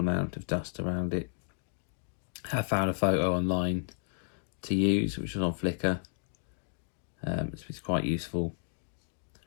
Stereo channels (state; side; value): silent; right; digital silence